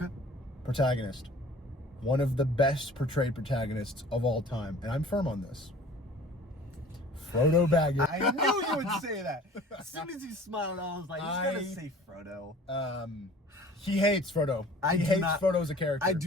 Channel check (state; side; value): normal; both; correlation 0.47